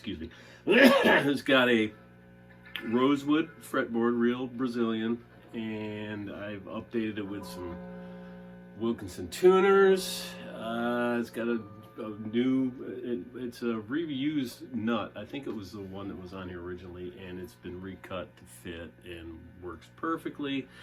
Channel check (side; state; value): both; identical; correlation 1.00